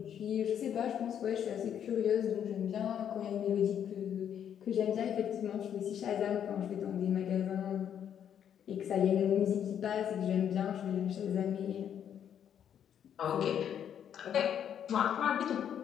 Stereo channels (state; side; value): quieter; right; 9.1 dB